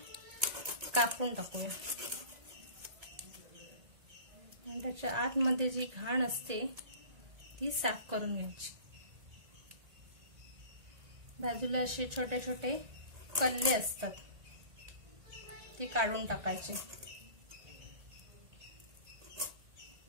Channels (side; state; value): left; late; 1.9 ms